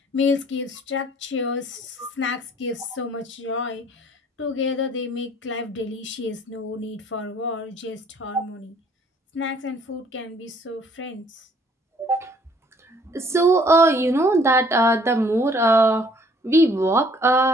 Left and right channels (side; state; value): both; normal; correlation 0.59